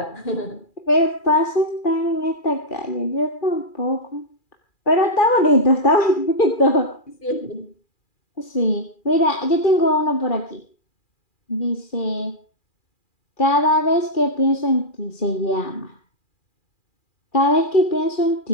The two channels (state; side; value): late; right; 2.4 ms